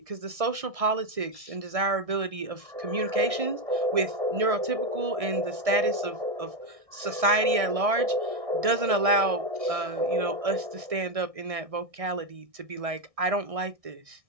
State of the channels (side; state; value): left; late; 1.6 ms